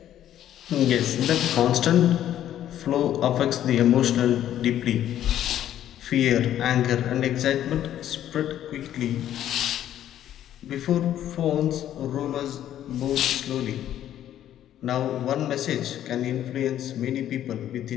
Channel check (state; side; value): quieter; right; 11.5 dB